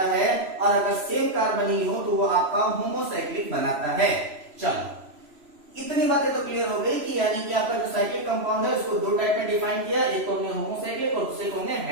है, और अगर सेम कार्बन ही हो तो वो आपका होमोसाइक्लिक बनाता है। चलो, इतनी बातें तो क्लियर हो गई कि यानी कि आपका जो साइक्लिक कंपाउंड है उसको 2 टाइप में डिफाइन किया, एक को हमने होमोसाइक्लिक और दूसरे को हमने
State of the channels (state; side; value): late; left; 3.0 ms